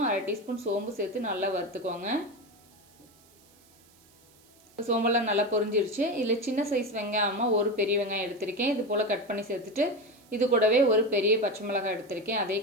1/2 டீஸ்பூன் சோம்பு சேர்த்து நல்லா வறுத்துக்கோங்க. சோம்பெல்லாம் நல்லா பொரிஞ்சிருச்சு. இதில் சின்ன சைஸ் வெங்காயமாக ஒரு பெரிய வெங்காயம் எடுத்திருக்கேன், இது போல் கட் பண்ணி சேர்த்துட்டு இது கூடவே ஒரு பெரிய பச்சை மிளகாய் எடுத்திருக்கேன்,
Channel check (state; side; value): noise; right; hiss, 29 dB below the sound